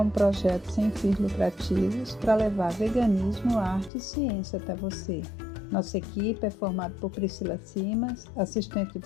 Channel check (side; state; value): right; drops out; at 3.9 s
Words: projeto sem fins lucrativos para levar veganismo, arte e ciência até você. Nossa equipe é formada por Priscila Simas, assistente de